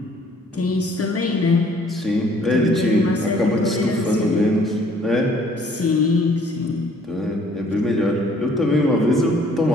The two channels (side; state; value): both; normal; correlation 0.59